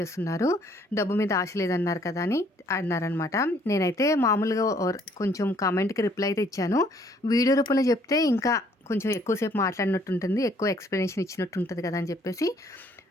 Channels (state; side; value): normal; both; correlation 0.63